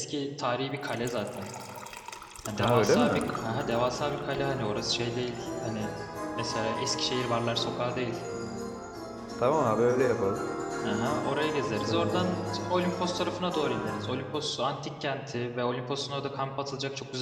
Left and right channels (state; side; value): identical; both; correlation 1.00